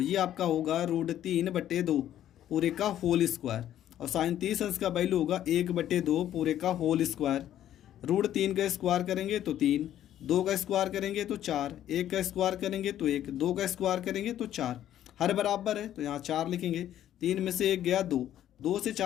ये आपका होगा √3/2 पूरे का होल स्क्वायर, और साइन 30 अंश का वैल्यू होगा 1/2 पूरे का होल स्क्वायर। √3 का स्क्वायर करेंगे तो 3, 2 का स्क्वायर करेंगे तो 4, 1 का स्क्वायर करेंगे तो 1, 2 का स्क्वायर करेंगे तो 4, हर बराबर है तो यहाँ 4 लिखेंगे, 3 में से 1 गया 2 से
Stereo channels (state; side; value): quieter; right; 11.6 dB